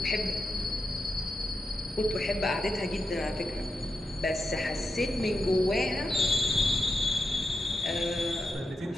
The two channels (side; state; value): both; normal; correlation 0.88